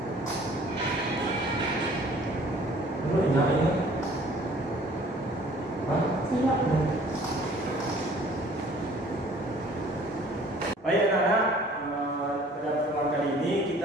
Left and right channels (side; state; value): both; normal; correlation 0.53